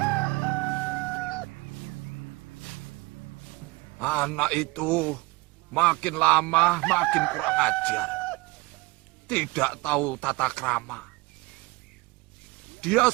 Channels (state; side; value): quieter; left; 23.2 dB